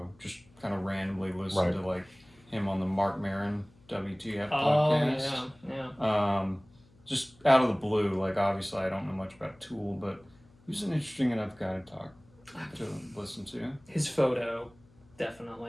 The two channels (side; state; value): left; noise; hum, 28 dB below the sound